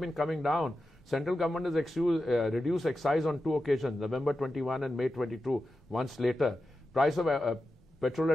coming down. Central government has reduced excise on 2 occasions, November 21 and May 22, once later. Price of petrol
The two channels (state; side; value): normal; both; correlation 0.91